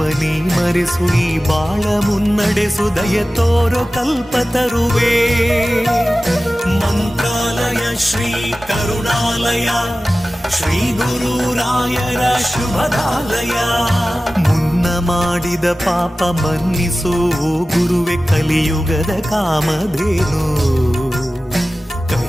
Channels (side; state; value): both; normal; correlation 0.96